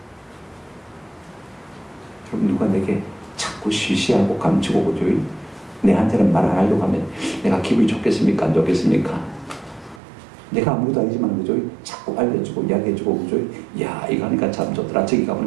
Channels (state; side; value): drops out; left; at 10.0 s